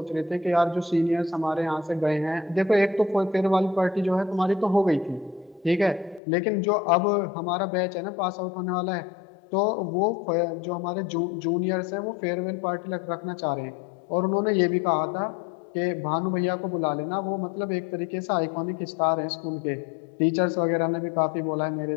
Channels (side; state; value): right; drops out; at 6.2 s